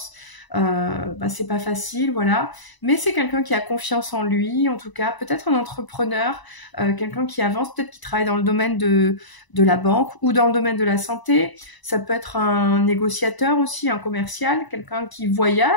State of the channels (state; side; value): late; right; 1.0 ms